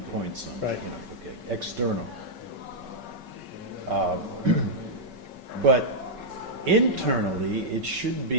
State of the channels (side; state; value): left; late; 5.3 ms